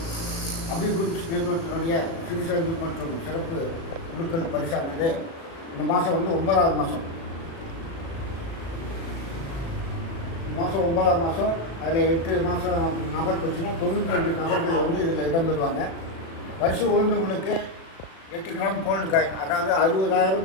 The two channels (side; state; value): right; late; 36 ms